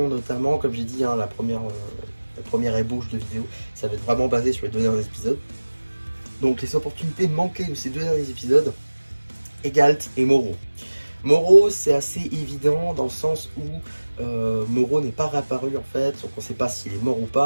notamment, comme j'ai dit, hein, la première ébauche de vidéo, ça va être vraiment basé sur les 2 derniers épisodes. Donc les opportunités manquées de ces 2 derniers épisodes, Egalt et Moro. Moro, c'est assez évident dans le sens où Moro n'est pas réapparu en fait, donc on ne sait pas s'il est mort ou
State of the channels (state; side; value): inverted; both; correlation -1.00